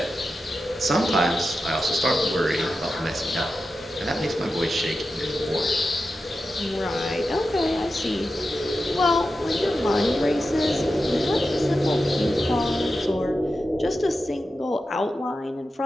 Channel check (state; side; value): normal; both; correlation 0.91